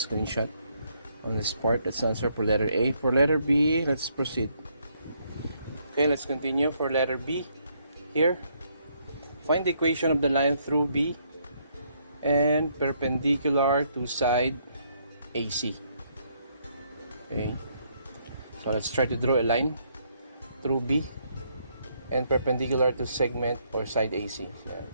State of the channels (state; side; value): inverted; both; correlation -0.72